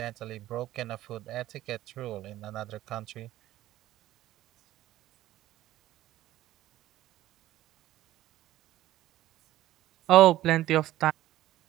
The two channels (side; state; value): left; quieter; 14.7 dB